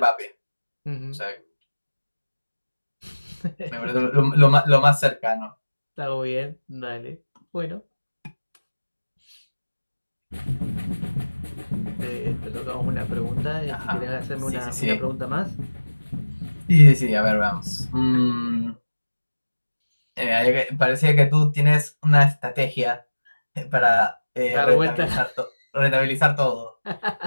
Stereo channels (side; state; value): both; inverted; correlation -1.00